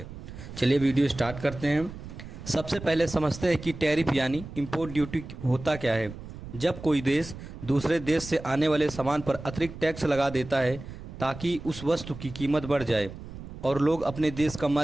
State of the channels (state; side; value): noise; right; rumble, 12 dB below the sound